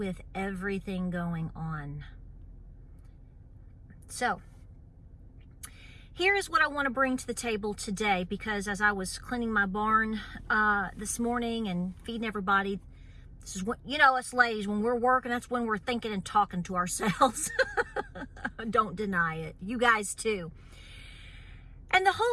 everything going on. So here is what I want to bring to the table today, because as I was cleaning my barn this morning and feeding everybody, this is what, you know, us ladies, when we're working, that's when we're thinking and talking to ourselves. Don't deny it. You guys too. And the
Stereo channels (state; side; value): identical; both; correlation 1.00